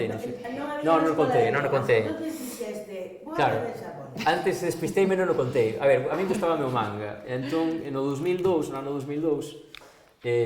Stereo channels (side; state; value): both; identical; correlation 1.00